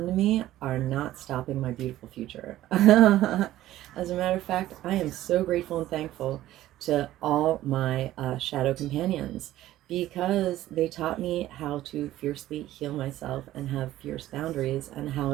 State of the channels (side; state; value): left; quieter; 14.5 dB